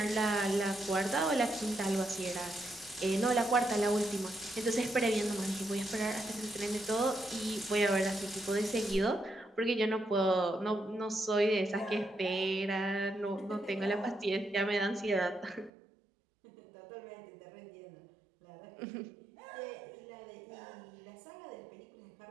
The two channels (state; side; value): drops out; left; at 15.7 s